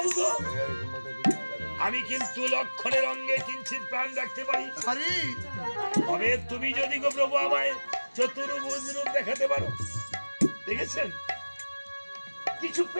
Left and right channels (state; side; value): inverted; both; correlation -1.00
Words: আমি কিন্তু লক্ষণের অঙ্গে কিঞ্চিত প্রাণ রাখতে পারি তবে তুমি যদি গো প্রভু আমায় চতুর্ভুজ রূপ দেখাতে পারো দেখেছেন কিছু